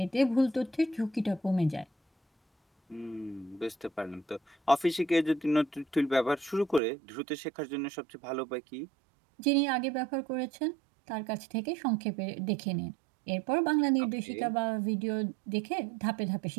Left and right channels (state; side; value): drops out; left; at 6.8 s